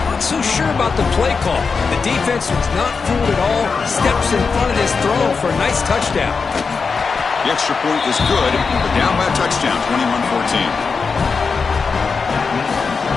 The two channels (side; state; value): right; quieter; 5.0 dB